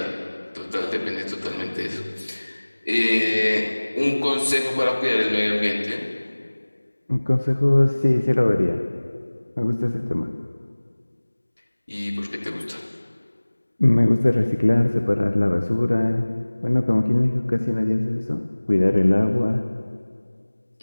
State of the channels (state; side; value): inverted; both; correlation -1.00